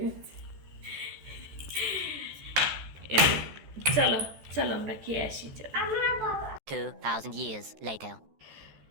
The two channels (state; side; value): late; left; 14 ms